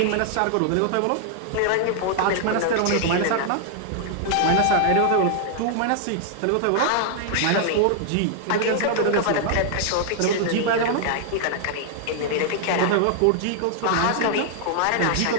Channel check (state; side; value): different; both; correlation 0.00